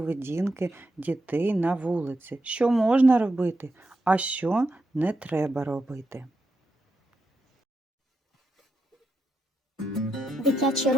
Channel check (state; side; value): normal; both; correlation 0.85